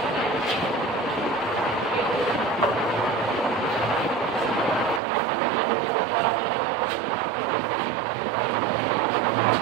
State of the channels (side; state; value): left; drops out; at 5.0 s